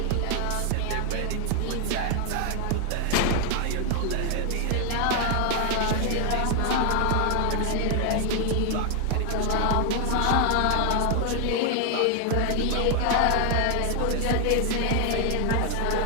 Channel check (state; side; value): different; both; correlation 0.00